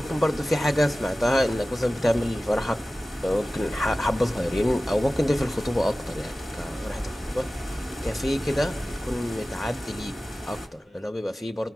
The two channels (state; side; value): normal; both; correlation 0.96